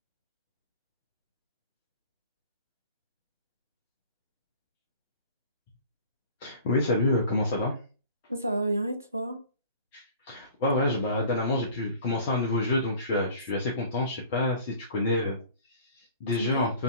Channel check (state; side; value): inverted; both; correlation -0.46